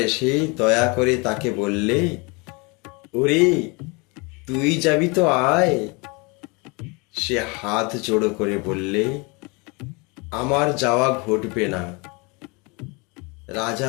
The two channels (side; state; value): right; quieter; 28.9 dB